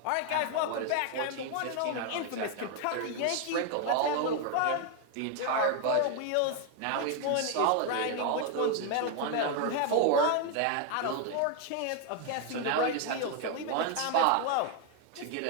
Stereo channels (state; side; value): different; both; correlation 0.01